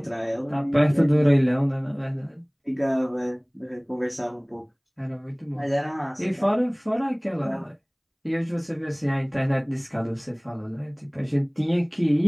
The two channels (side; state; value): both; identical; correlation 1.00